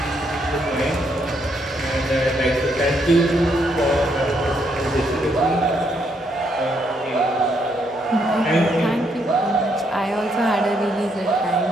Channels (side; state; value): both; normal; correlation 0.74